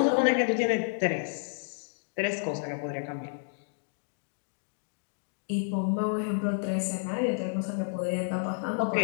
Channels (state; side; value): silent; right; digital silence